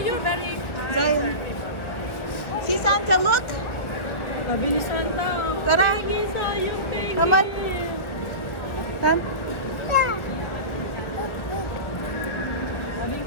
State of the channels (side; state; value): right; late; 1.4 ms